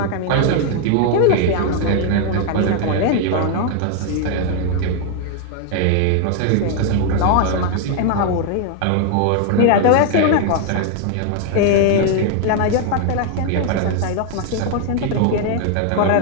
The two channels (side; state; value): both; different; correlation 0.00